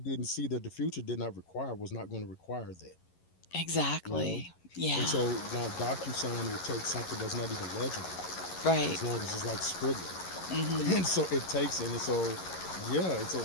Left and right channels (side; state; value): right; late; 11 ms